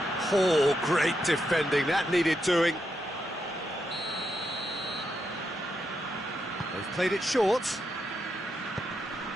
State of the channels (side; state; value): both; normal; correlation 0.82